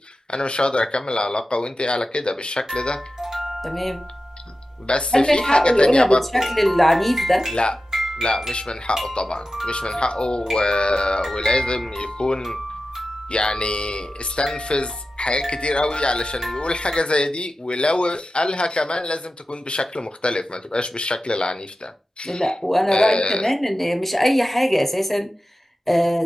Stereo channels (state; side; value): normal; both; correlation 0.93